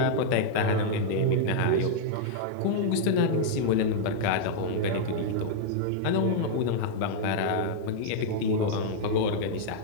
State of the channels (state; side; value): different; both; correlation -0.01